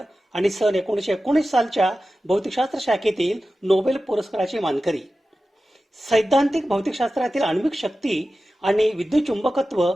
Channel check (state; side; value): normal; both; correlation 0.94